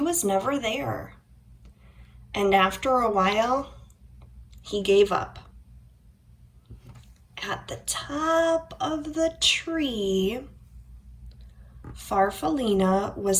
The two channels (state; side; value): identical; both; correlation 1.00